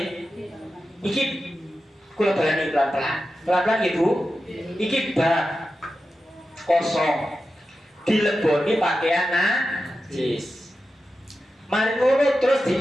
Iki kula balani pelan-pelan Ibu. Iki bak kosong dileboni pakaian najis. Mari ngono terus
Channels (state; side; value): normal; both; correlation 0.91